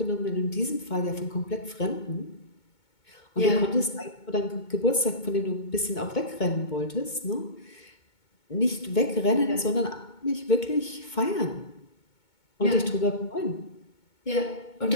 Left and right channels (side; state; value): right; late; 2.2 ms